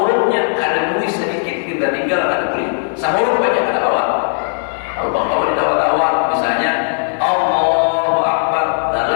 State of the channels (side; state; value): right; silent; 67 dB below the other